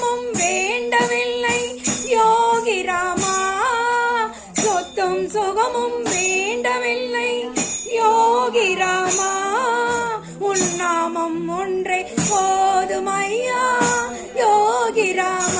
வேண்டவில்லை யோகி ராமா சொத்தும் சுகமும் வேண்டவில்லை யோகி ராமா உன் நாமம் ஒன்றே போதுமையா யோகி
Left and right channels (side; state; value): both; identical; correlation 1.00